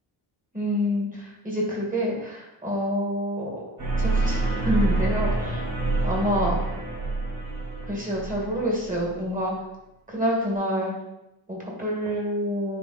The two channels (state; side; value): normal; both; correlation 0.43